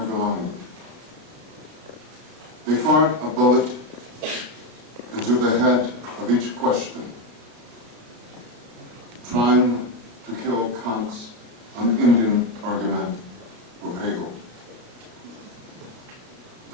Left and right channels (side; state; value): left; late; 33 ms